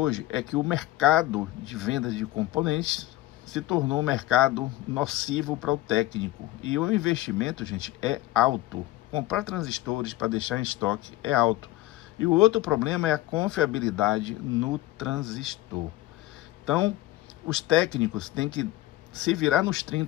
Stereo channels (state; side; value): quieter; right; 16.7 dB